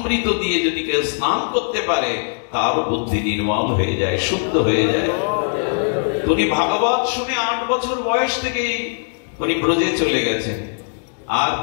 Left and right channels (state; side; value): silent; right; digital silence